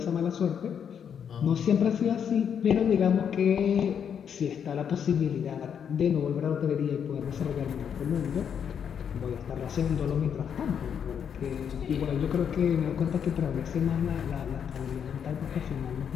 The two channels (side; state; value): right; quieter; 7.9 dB